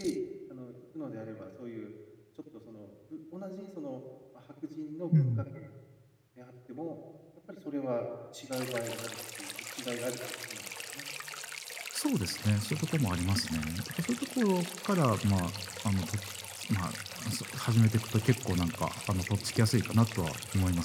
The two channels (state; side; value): identical; both; correlation 1.00